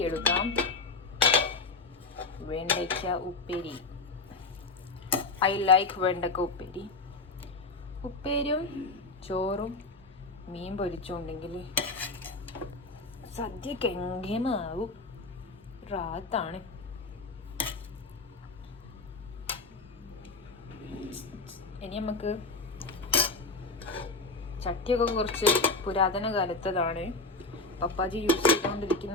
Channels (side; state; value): right; quieter; 3.5 dB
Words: എടുക്കാം. വെണ്ടയ്ക്ക ഉപ്പേരി. ഐ ലൈക്ക് വെണ്ടക്ക ഉപ്പേരി. ഉപ്പേരിയും ചോറും മീൻ പൊരിച്ചുണ്ടെങ്കിൽ സദ്യക്ക് എങ്കേമാവും. റാത്താണ്. ഇനി നമുക്ക് ചട്ടിയൊക്കെ കുറച്ച് പുരാതന കാലത്തതാണ്. പപ്പാജി യൂസ്